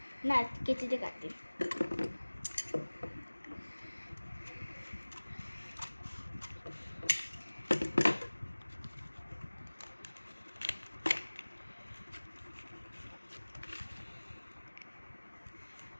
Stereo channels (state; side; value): inverted; both; correlation -1.00